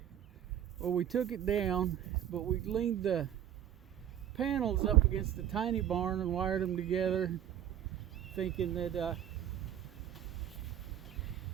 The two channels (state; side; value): quieter; left; 10.7 dB